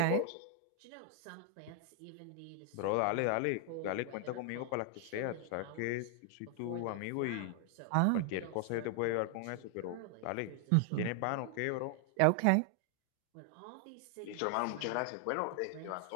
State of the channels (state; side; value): different; both; correlation 0.00